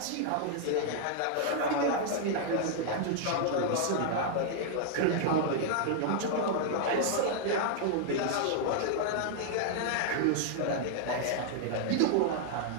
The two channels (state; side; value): different; both; correlation 0.00